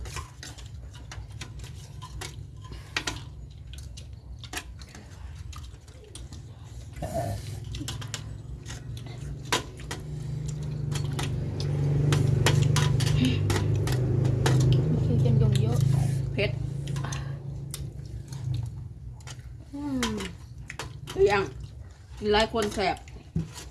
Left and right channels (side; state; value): both; identical; correlation 1.00